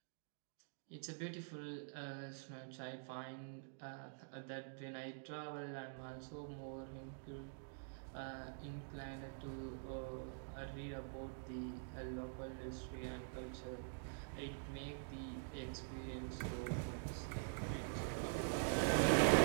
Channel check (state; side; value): silent; left; digital silence